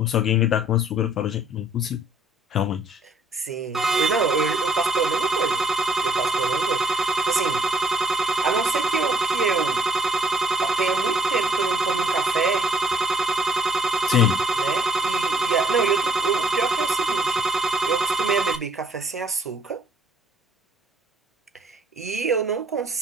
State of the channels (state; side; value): normal; both; correlation 0.62